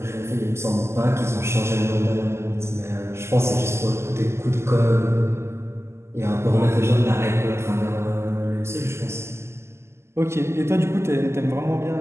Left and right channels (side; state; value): left; late; 0.13 ms